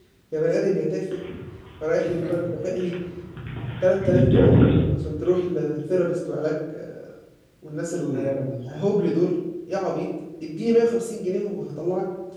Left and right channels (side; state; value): both; identical; correlation 1.00